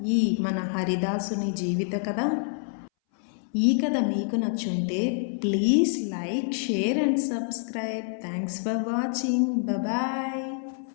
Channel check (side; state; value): right; silent; 60 dB below the other